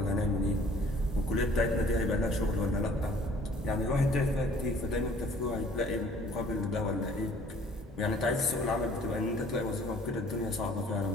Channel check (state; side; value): normal; both; correlation 0.55